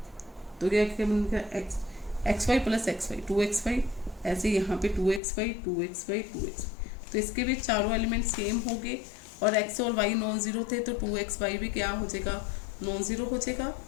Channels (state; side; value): drops out; right; at 5.2 s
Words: तो क्या बनेगा? X Y plus X Y 2xy। ऐसे यहाँ पे 2xy 2xy 2x। तो इसके भी चारों एलिमेंट सेम हो गए और x और y नॉन जीरो थे तो 2xy भी क्या हो जाएगा? नॉन जीरो हो जाएगा।